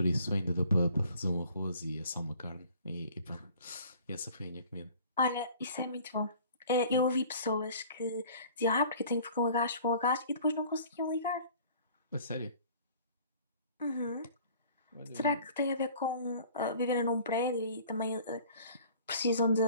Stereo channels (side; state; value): both; inverted; correlation -0.50